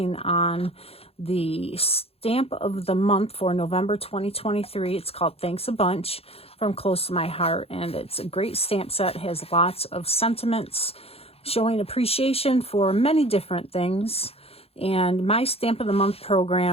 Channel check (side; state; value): right; late; 0.29 ms